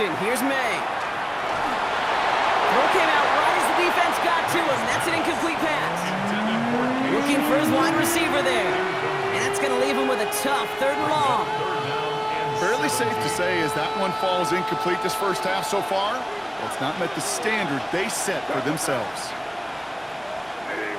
here's May. Throw came out right as the defense got to him. That's an incomplete pass. Looking for his wide receiver there. And that's going to leave him with a tough 3rd and long. Fairly safe to say as that one falls incomplete this 1st half so far, well, it's not met the standard they set for themselves.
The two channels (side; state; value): both; identical; correlation 1.00